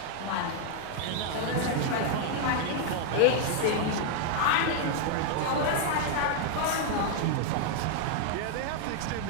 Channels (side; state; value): both; different; correlation 0.00